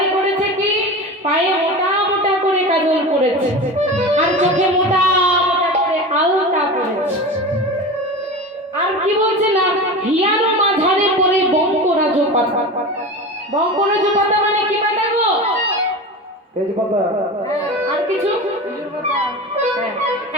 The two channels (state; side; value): normal; both; correlation 0.29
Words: করেছে কি? পায়ে মোটা মোটা করে কাজল পড়েছে, আর চোখে মোটা মোটা করে আলতা পড়েছে। আর কি বলছে না, হিয়ানো মাঝারে পড়ে বঙ্করাজ পাতা। বঙ্করাজ পাতা মানে কি পাতা গো? তেজপাতা। আর কিছু? হ্যাঁ,